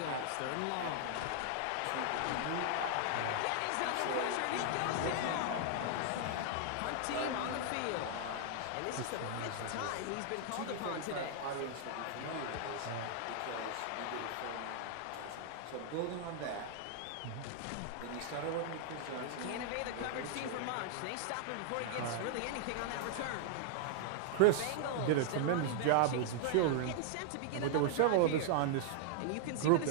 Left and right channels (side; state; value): both; different; correlation 0.00